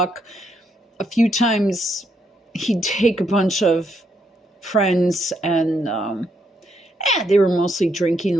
A few times he'd take a bunch of friends and they were mostly drinking a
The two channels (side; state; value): both; normal; correlation 0.76